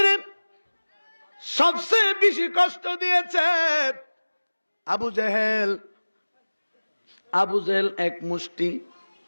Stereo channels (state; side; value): inverted; both; correlation -1.00